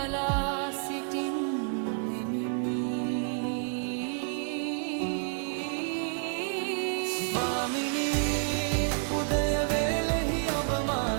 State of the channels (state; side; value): silent; left; 58 dB below the other